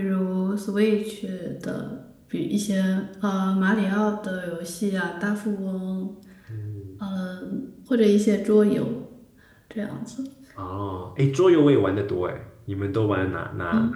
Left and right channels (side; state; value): both; identical; correlation 1.00